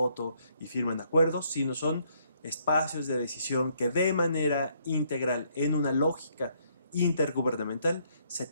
y firman acuerdos, sino son espacios de decisión que de manera integral, en una lógica intergubernamental, se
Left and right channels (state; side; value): inverted; both; correlation -0.69